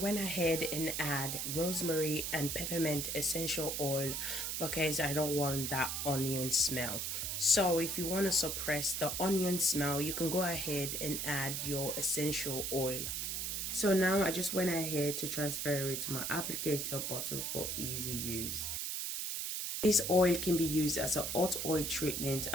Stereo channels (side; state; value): right; noise; hiss, 2 dB below the sound